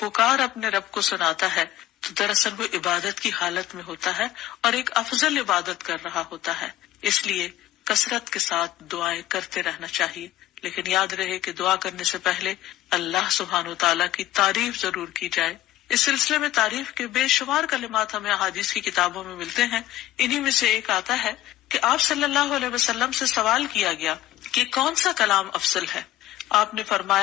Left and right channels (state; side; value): quieter; right; 14.5 dB